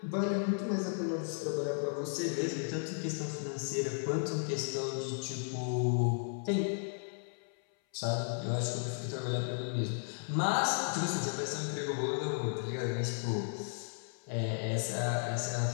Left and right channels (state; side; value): silent; right; 55 dB below the other